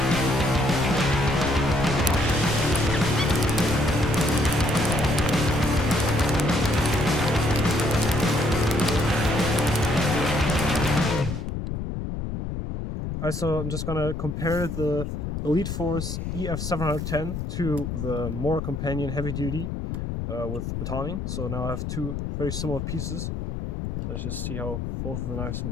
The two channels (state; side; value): noise; left; rumble, 4 dB below the sound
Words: So I'm just gonna compare the Elite Force EF710 to the Mora Companion Heavy Duty with Batoning. So now I have two very similar pieces. Let's just see how both of the knives